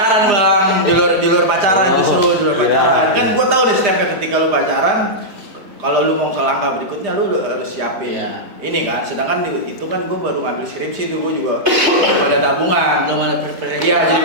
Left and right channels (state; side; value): late; left; 3.5 ms